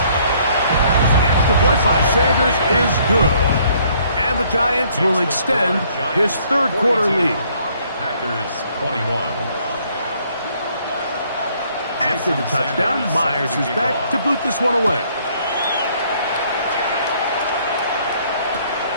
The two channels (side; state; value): both; inverted; correlation -0.64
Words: The extra point by Sanders is good. And the Giants will extend his third quarter lead. Packers 21. After the touchdown, Myers is back to boot this one away.